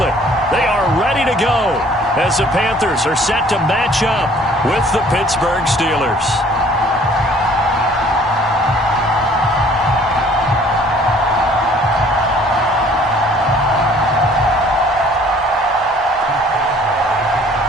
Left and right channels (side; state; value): both; normal; correlation 0.55